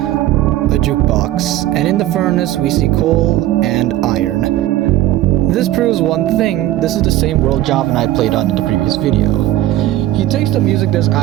jukebox, and in the furnace we see coal and iron. This proves one thing: this is the same world Javanite played on in the previous video. He takes the music disc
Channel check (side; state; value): left; quieter; 14.4 dB